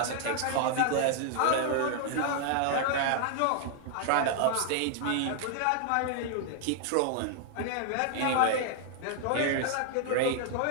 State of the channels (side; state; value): both; different; correlation 0.00